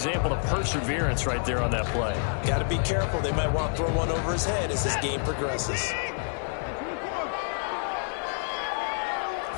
of perseverance right there on that play. Got to be careful. They might want to throw one over his head as this game progresses.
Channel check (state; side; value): silent; right; 59 dB below the other